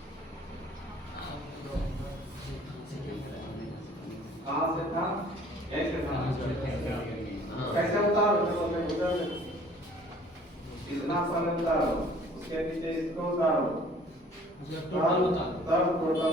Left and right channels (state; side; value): normal; both; correlation 0.53